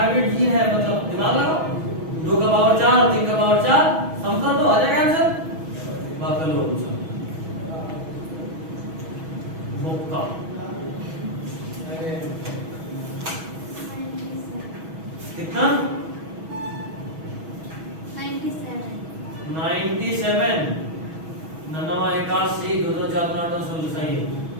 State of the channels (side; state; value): left; late; 6.2 ms